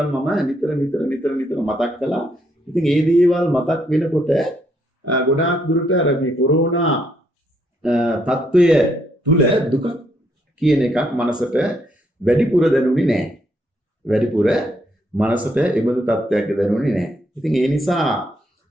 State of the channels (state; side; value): normal; both; correlation 0.74